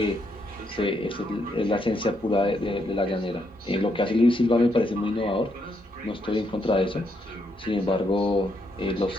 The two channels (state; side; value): normal; both; correlation 0.77